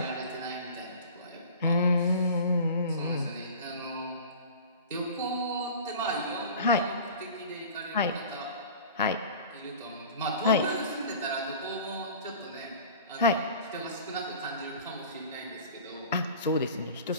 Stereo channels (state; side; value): inverted; both; correlation -0.40